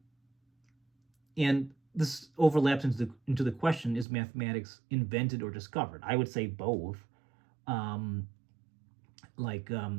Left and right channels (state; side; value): drops out; left; at 4.0 s